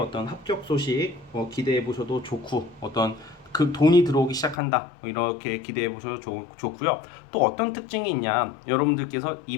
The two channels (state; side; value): drops out; right; at 4.5 s